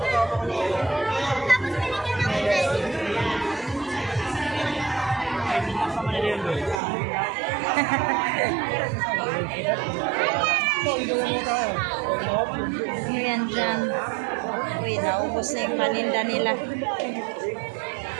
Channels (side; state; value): left; drops out; at 6.8 s